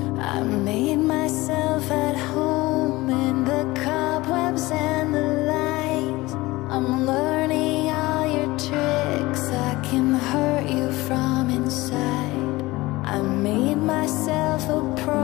I made myself at home in the cobwebs and the lies. I'm learning all your tricks, I can hurt you from inside. I made myself a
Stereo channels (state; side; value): quieter; right; 20.2 dB